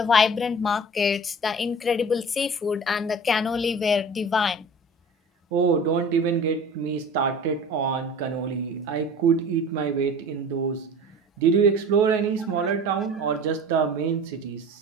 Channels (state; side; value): normal; both; correlation 0.40